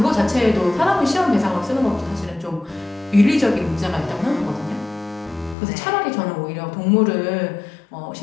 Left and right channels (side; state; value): right; drops out; at 5.6 s